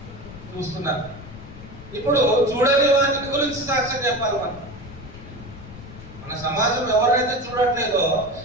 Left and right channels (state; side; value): noise; left; rumble, 15 dB below the sound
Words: చూస్తున్నారు. ఇప్పుడు చూడని వాటి గురించి సాక్ష్యం చెప్పాలి. మన సమాజం ఎవరైతే చూడట్లేదో,